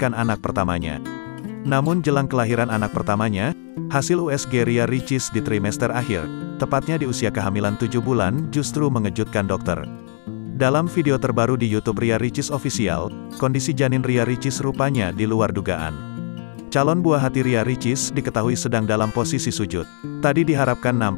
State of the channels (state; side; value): silent; right; digital silence